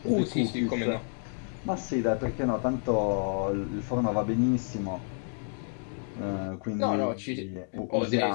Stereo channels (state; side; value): silent; right; 58 dB below the other